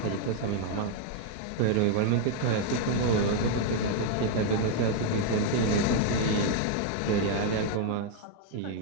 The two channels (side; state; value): both; different; correlation 0.00